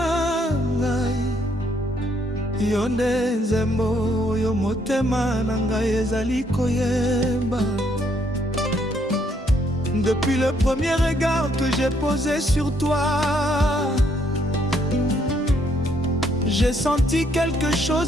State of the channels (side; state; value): both; normal; correlation 0.70